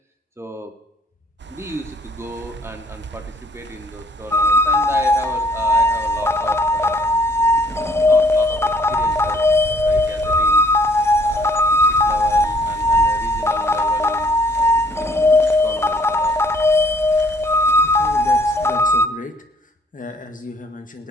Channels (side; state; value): both; normal; correlation 0.61